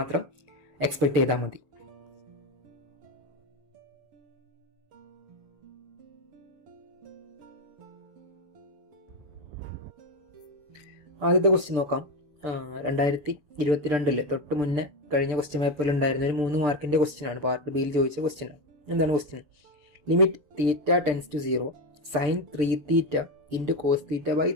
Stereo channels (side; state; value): left; late; 6.8 ms